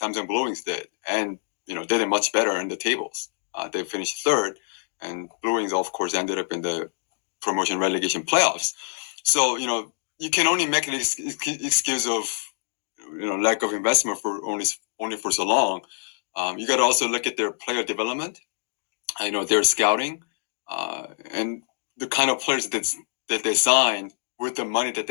Blue Wings did, and they did much better in the tables. They finished third, and Blue Wings, of course, ended up in the promotion relegation playoffs. So you can only make an excuse of lack of investment for only for so long. You got to also look at their player development. Their scouting, and the kind of players that they signed with the money that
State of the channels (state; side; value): silent; right; digital silence